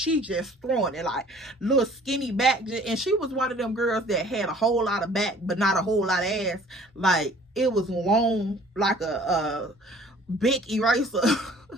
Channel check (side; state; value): both; normal; correlation 0.52